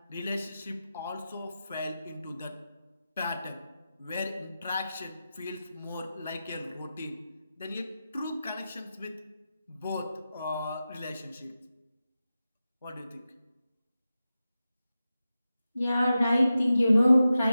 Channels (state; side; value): inverted; both; correlation -0.92